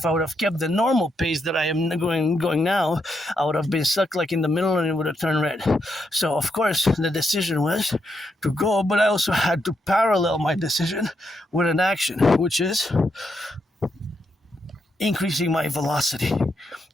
I would have kept the normal pace that I am going now, I would have been stuck like in the middle and it would have turned red. So of course the decision was to go, but I also had to parallel my decision with an action, which is increasing my velocity.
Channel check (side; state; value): both; normal; correlation 0.81